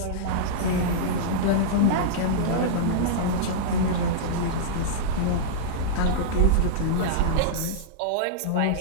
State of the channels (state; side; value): different; both; correlation -0.03